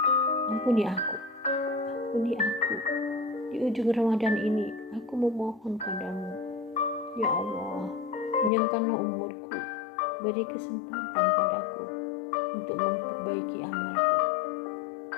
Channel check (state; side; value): drops out; right; at 8.5 s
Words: ampuni aku. Ampuni aku. Di ujung Ramadan ini, aku memohon padamu. Ya Allah, panjangkanlah umurku. Beri kesempatan padaku untuk memperbaiki amalku.